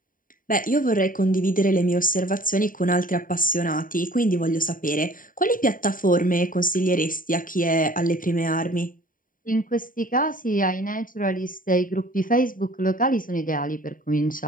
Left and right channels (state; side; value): late; right; 0.40 ms